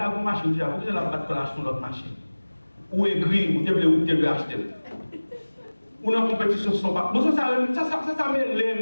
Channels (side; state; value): both; inverted; correlation -1.00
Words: une machine, vous avez la battre sur l'autre machine. Ou aigri, ou devez acheter. Ou dans la compétition, ce ne sont pas. Ça m'élève.